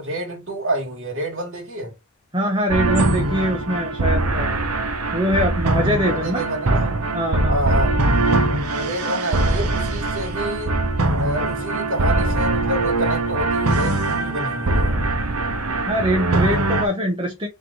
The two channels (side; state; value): both; normal; correlation 0.34